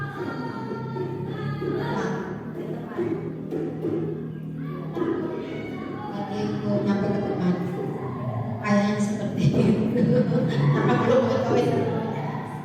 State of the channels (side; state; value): both; identical; correlation 1.00